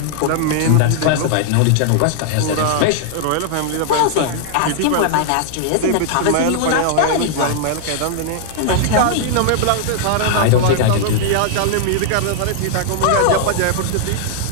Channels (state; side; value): different; both; correlation -0.01